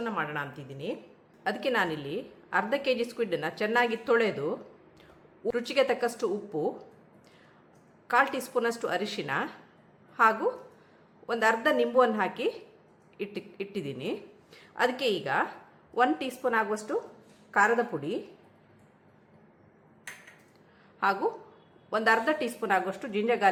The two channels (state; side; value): identical; both; correlation 1.00